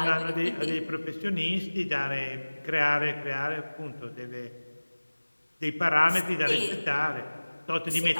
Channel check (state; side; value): inverted; both; correlation -1.00